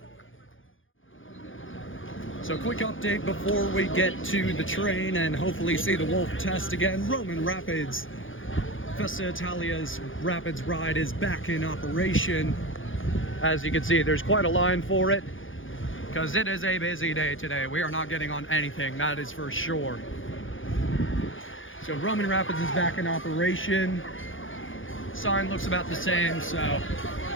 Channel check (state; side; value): late; right; 0.58 ms